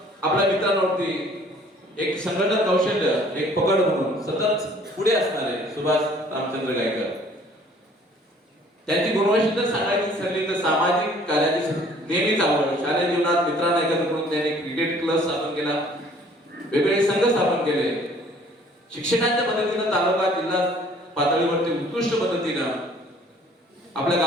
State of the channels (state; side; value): normal; both; correlation 0.56